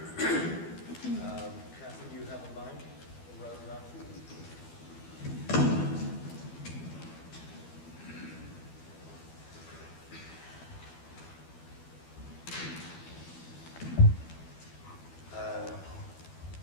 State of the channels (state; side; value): late; right; 12 ms